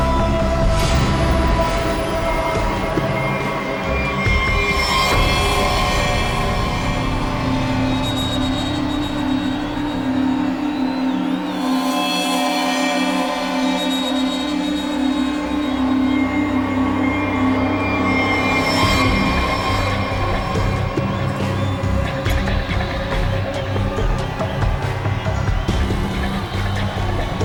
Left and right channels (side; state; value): both; identical; correlation 1.00